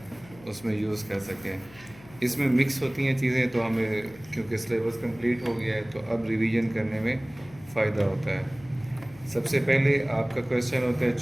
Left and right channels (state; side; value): noise; left; hum, 22 dB below the sound